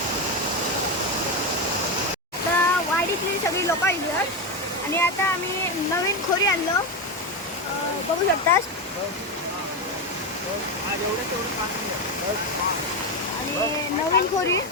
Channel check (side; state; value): both; normal; correlation 0.12